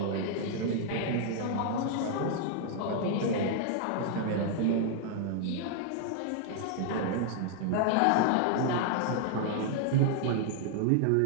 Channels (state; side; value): different; both; correlation 0.00